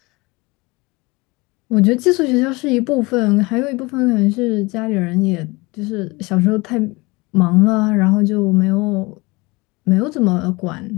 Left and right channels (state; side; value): quieter; right; 24.2 dB